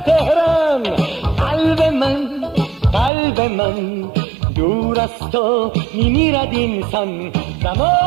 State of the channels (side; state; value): left; drops out; at 3.1 s